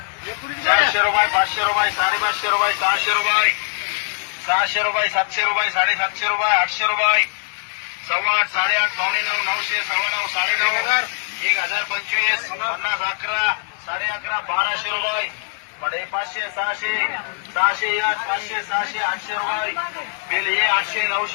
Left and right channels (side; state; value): right; silent; digital silence